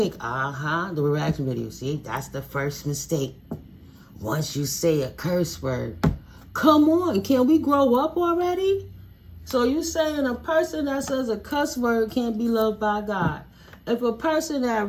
The reaction video. See, that's the first mistake. Once you say a curse word. Come on, can we grow up already? So you saying a person that says a cuss word can't be loved by God. If a person that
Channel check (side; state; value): both; identical; correlation 1.00